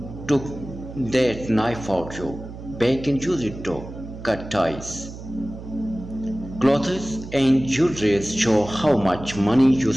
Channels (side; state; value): right; noise; hum, 12 dB below the sound